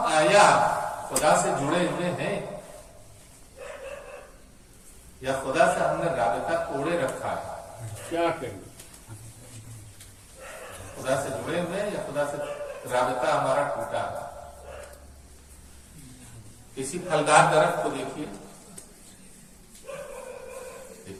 آیا خدا سے جڑے ہوئے ہیں یا خدا سے ہم نے رابطہ توڑے رکھا ہے؟ کیا کریں؟ خدا سے جڑے ہوئے ہیں یا خدا سے رابطہ ہمارا ٹوٹا ہے؟ کسی پھلدار درخت کو دیکھیے.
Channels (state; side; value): identical; both; correlation 1.00